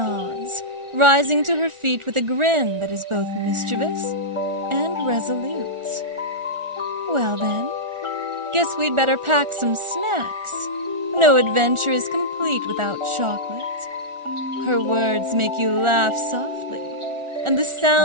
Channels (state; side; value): late; left; 1.4 ms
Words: rising to her feet with a grin that is both mischievous and resolute. "Well then, guess we'd better pack some snacks. No adventure is complete without chocolate." Her words make you laugh softly, and the